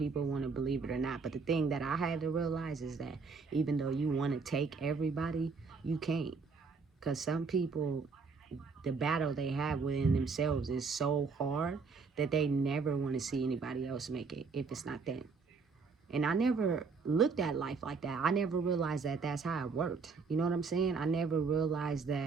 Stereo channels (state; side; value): quieter; left; 4.8 dB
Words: want to believe it or not. But the thing that I had to realize is that even though you want to take everybody, you can't. Because some people, the battle they have within themselves is so hard that they never want to see anybody else make it if it's not them. And I never looked at life like that. I never realized that that's how it worked. You know what I'm saying? I never realized